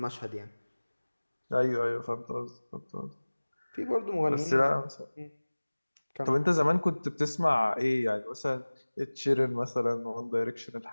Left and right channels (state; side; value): inverted; both; correlation -1.00